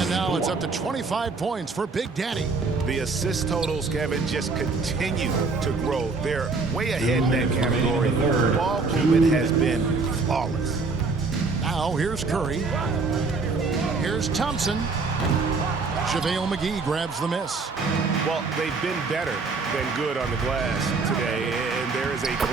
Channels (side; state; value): left; quieter; 4.1 dB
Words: now it's up to 25 points for Big Daddy. The assist totals, Kevin, just continue to grow. They're way ahead in that category. Ball movement has been flawless. Now here's Curry. Here's Thompson. JaVale McGee grabs the miss. Well, they've been better than good on the glass today, and there is a